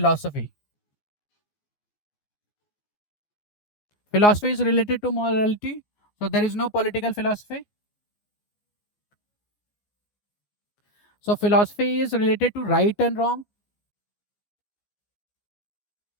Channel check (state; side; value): late; right; 14 ms